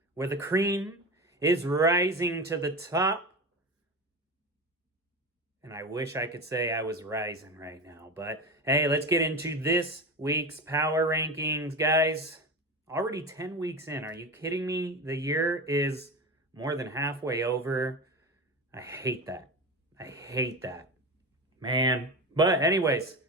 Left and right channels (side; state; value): both; normal; correlation 0.25